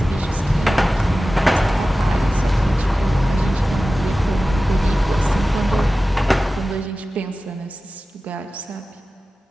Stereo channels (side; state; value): both; normal; correlation 0.95